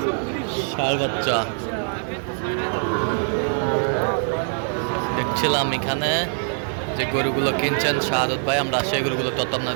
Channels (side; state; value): left; silent; 59 dB below the other